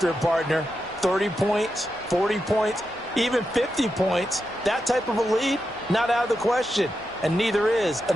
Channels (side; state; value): both; normal; correlation 0.87